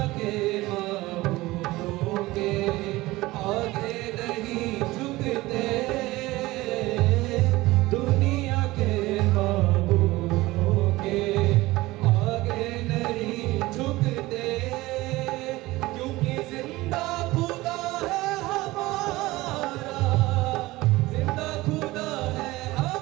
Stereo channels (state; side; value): quieter; left; 19.3 dB